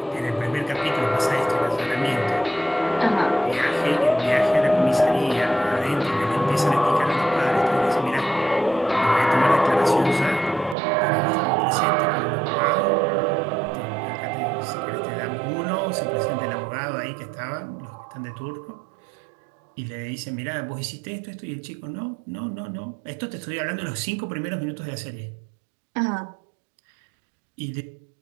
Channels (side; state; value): left; drops out; at 10.8 s